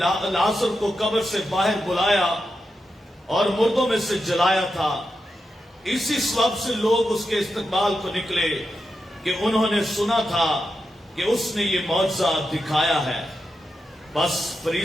لازر کو قبر سے باہر بلایا اور مردوں میں سے جلایا تھا۔ اسی سبب سے لوگ اس کے استقبال کو نکلے کہ انہوں نے سنا تھا کہ اس نے یہ معجزہ دکھایا ہے۔ بس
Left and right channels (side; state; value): both; normal; correlation 0.88